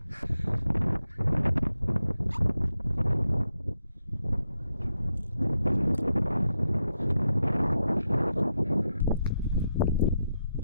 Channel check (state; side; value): inverted; both; correlation -0.84